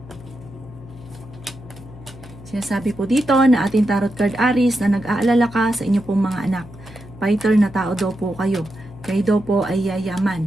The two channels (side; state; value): left; noise; hum, 17 dB below the sound